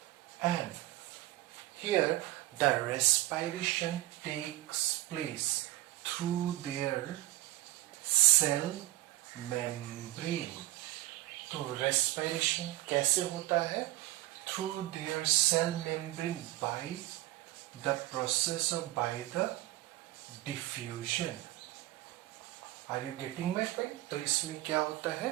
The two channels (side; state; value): left; quieter; 17.0 dB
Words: and here the respiration takes place through their cell membrane. तो respiration कैसे होता है? Through their cell membrane by the process of by the diffusion. Are you getting my point? तो इसमें क्या होता